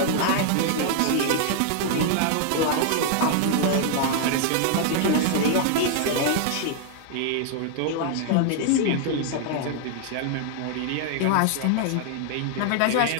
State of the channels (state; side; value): different; both; correlation 0.00